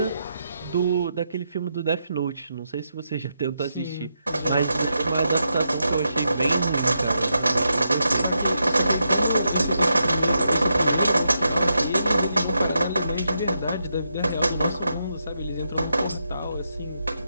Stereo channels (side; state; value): both; inverted; correlation -0.83